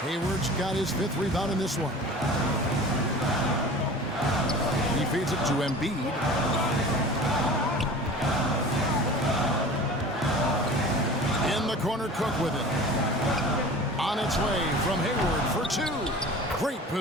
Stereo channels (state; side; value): normal; both; correlation 0.39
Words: Hayward's got his 5th rebound in this one. He feeds it to Embiid. In the corner, Cook with it. On its way from Hayward for 2. Great